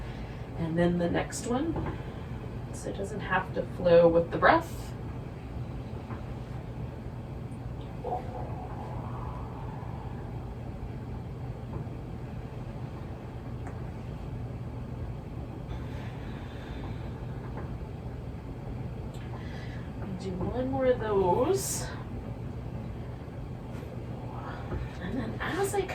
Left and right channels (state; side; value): identical; both; correlation 1.00